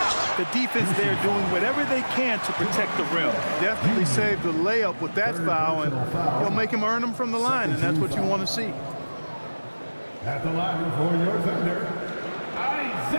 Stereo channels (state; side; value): inverted; both; correlation -1.00